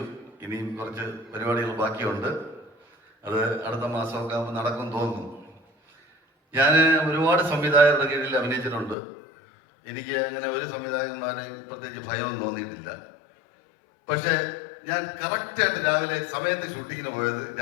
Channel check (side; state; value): right; drops out; at 9.0 s